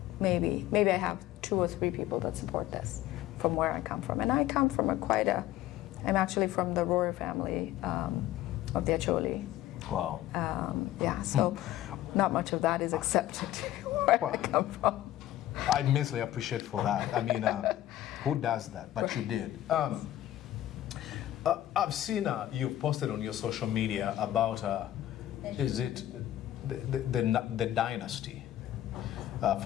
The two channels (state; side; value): quieter; right; 13.6 dB